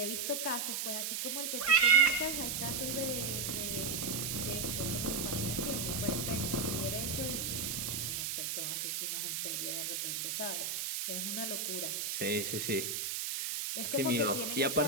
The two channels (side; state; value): right; noise; hiss, 1 dB below the sound